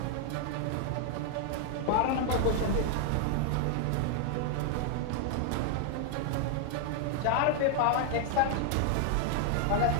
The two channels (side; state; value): both; different; correlation 0.00